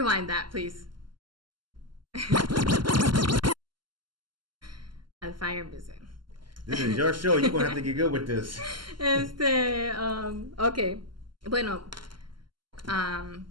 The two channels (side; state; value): left; late; 0.72 ms